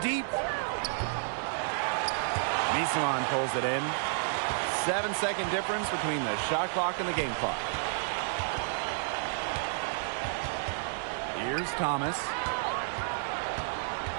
Misaman pulls it in. 7-second difference between the shot clock and the game clock. Here's Thomas.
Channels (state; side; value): silent; left; digital silence